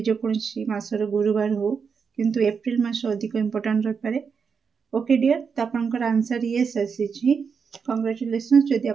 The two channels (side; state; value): left; quieter; 6.0 dB